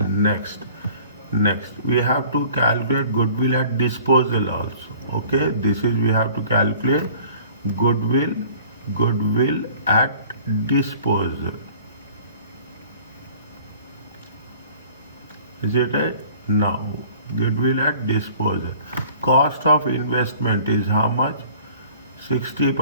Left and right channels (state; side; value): inverted; both; correlation -0.50